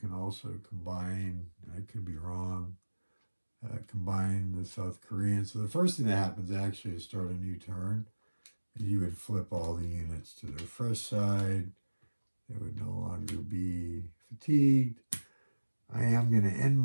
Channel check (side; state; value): both; inverted; correlation -1.00